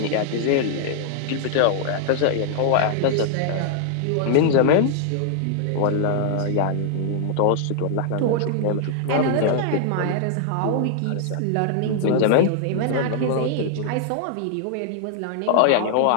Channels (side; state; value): both; different; correlation -0.01